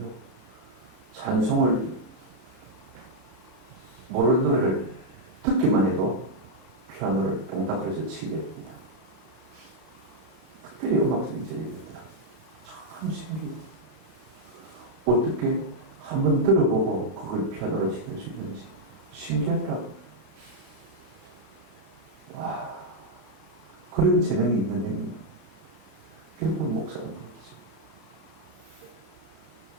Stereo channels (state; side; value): late; left; 33 ms